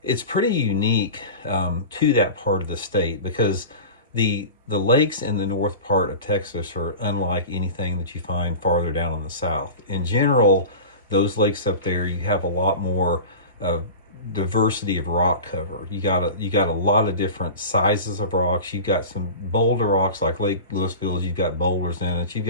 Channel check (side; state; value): both; inverted; correlation -0.31